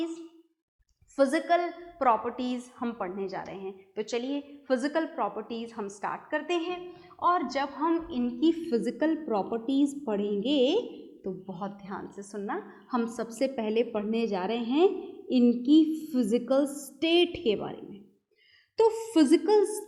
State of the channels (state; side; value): identical; both; correlation 1.00